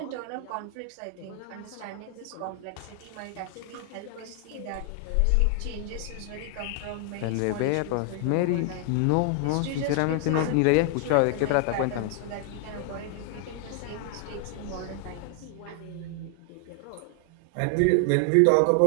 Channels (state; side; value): different; both; correlation 0.00